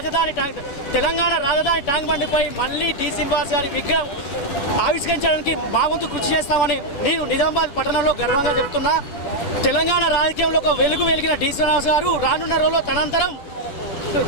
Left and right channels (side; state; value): right; late; 11 ms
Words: తెలంగాణ రాజధాని ట్యాంక్ బండిపై మళ్ళీ డి శ్రీనివాస్ గారి విగ్రహం ఆవిష్కరించడానికి మా వంతు కృషి చేస్తామని నేను నిజామాబాద్ పట్టణంలో గర్వంగా చెప్తున్నా. తెలంగాణ రాజకీయంలో ఒక వెలిగిన డి శ్రీనివాస్ గారు రానున్న రోజుల్లో తనంతరం